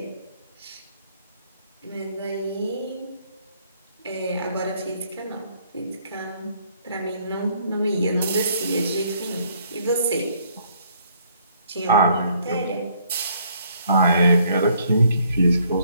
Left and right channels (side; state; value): both; inverted; correlation -0.66